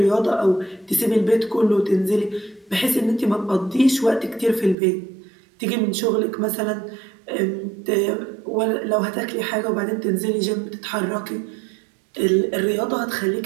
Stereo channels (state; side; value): drops out; left; at 4.8 s